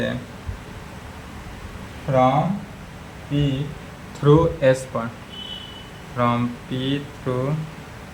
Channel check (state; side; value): identical; both; correlation 1.00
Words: फ्रॉम पी थ्रू एस पर, from P through